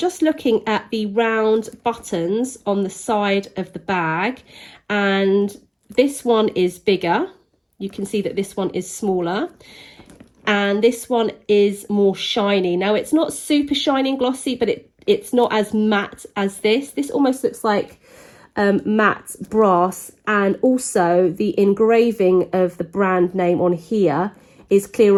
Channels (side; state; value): both; identical; correlation 1.00